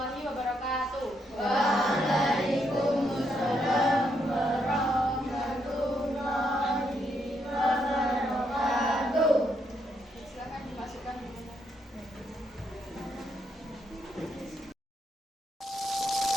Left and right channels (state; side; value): normal; both; correlation 0.77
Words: wabarakatuh. Waalaikumsalam warahmatullahi wabarakatuh. Silakan dimasukkan.